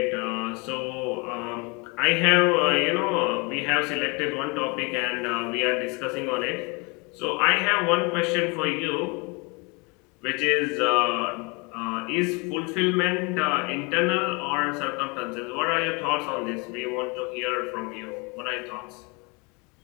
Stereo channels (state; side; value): quieter; right; 29.7 dB